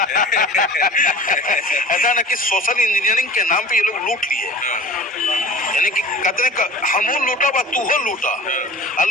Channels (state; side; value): normal; both; correlation 0.40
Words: ऐसा ना कि सोशल इंजीनियरिंग के नाम पे ये लोग लूट लिए, यानी कि कहते हमू लूटा बा तू हो लूटा, और